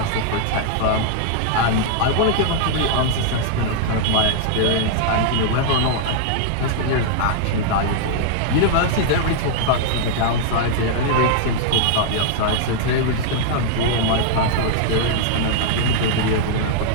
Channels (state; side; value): different; both; correlation -0.01